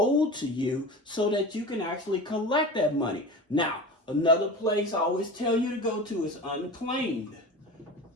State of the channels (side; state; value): both; normal; correlation 0.32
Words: to you, so that you can actually collect that money. Now, another place I always tell you to go to is Unclaimed.